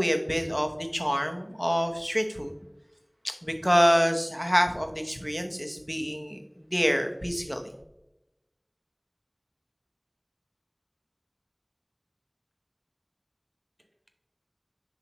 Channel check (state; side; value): identical; both; correlation 1.00